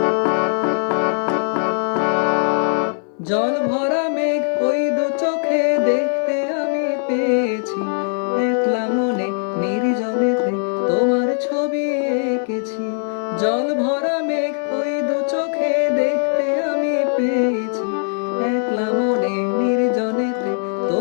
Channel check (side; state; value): right; silent; 58 dB below the other